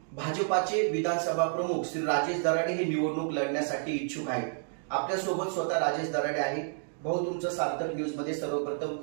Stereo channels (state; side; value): silent; left; digital silence